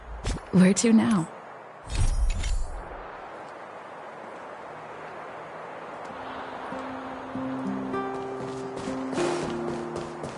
Where to now?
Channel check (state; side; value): identical; both; correlation 1.00